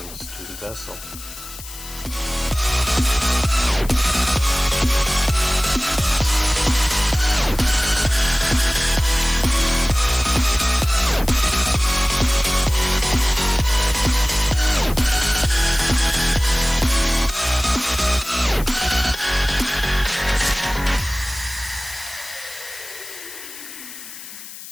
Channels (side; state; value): left; noise; hiss, 14 dB below the sound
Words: to the vessel.